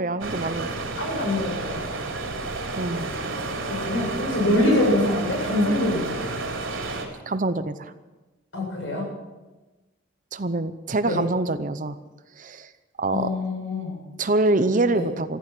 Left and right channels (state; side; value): normal; both; correlation 0.31